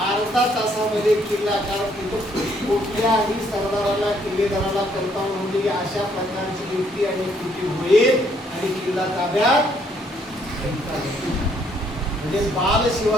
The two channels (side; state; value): both; normal; correlation 0.68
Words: तासामध्ये किल्ला, कारण तिथं कुठल्याही सरदाराला किल्लेदाराला कल्पना नव्हती की अशा प्रकारची युक्ती आणि कृती होईल आणि किल्ला ताब्यात. म्हणजे बाल